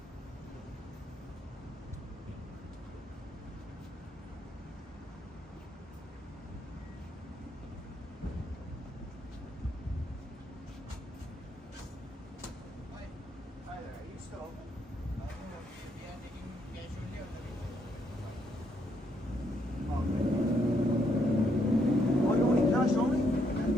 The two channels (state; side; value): normal; both; correlation 0.74